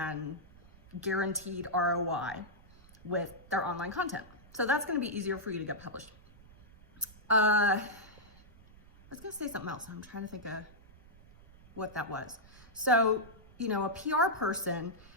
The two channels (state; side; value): noise; right; rumble, 23 dB below the sound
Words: guaranteed ROI with their online content. So that's going to be easier for you to get published. I was going to say something else. I'm trying to think of what that was. So, a PR person,